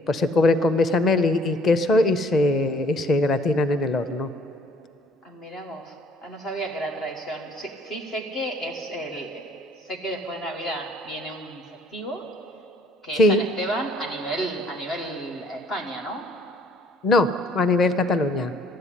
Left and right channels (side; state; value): both; normal; correlation 0.59